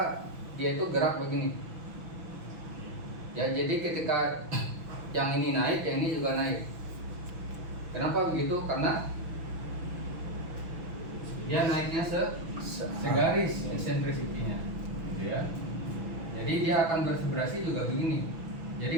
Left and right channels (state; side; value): late; left; 6.2 ms